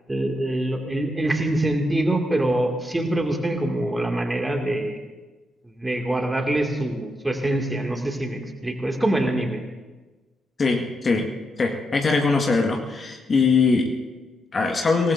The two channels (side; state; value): both; normal; correlation 0.82